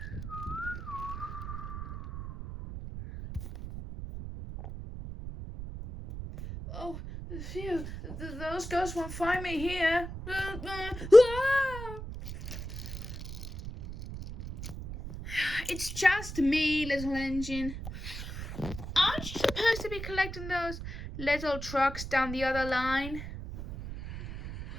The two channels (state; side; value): noise; right; rumble, 9 dB below the sound